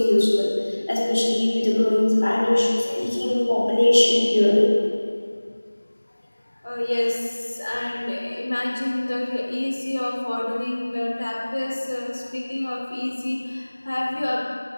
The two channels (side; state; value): both; inverted; correlation -1.00